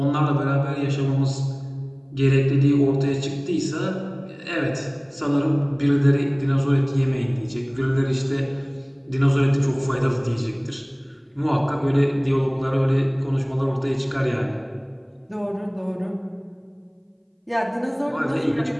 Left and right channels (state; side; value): identical; both; correlation 1.00